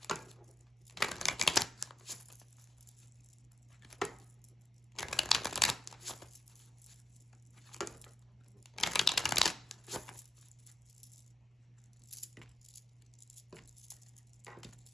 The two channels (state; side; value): normal; both; correlation 0.87